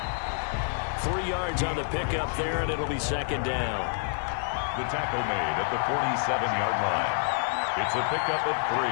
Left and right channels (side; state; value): right; silent; digital silence